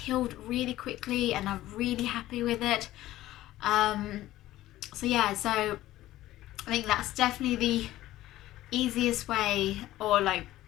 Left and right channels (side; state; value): right; quieter; 15.3 dB